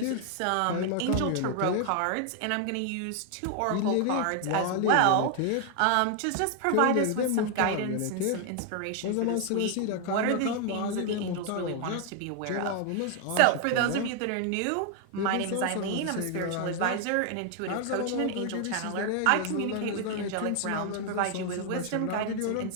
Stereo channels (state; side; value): different; both; correlation 0.00